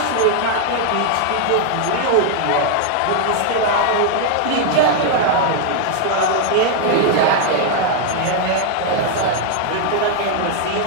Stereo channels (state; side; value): different; both; correlation 0.00